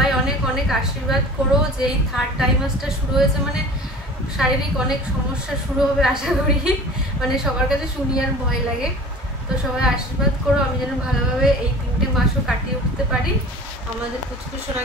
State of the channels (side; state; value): both; normal; correlation 0.41